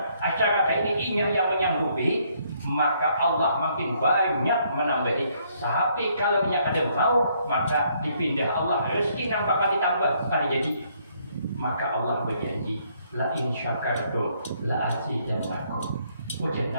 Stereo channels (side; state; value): both; inverted; correlation -0.69